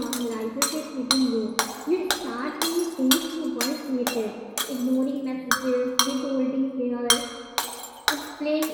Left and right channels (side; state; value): both; identical; correlation 1.00